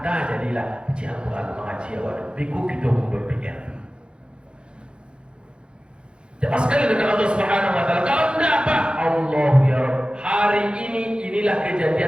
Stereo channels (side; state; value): left; late; 0.054 ms